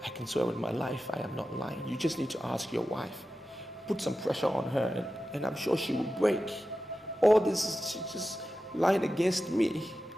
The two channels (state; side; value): normal; both; correlation 0.93